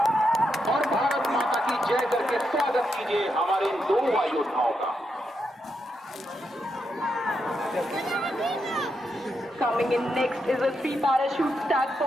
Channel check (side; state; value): both; normal; correlation 0.83